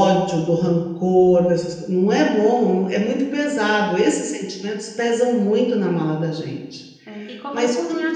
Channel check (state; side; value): identical; both; correlation 1.00